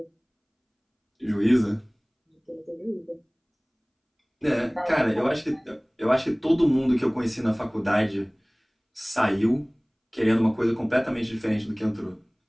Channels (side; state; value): both; identical; correlation 1.00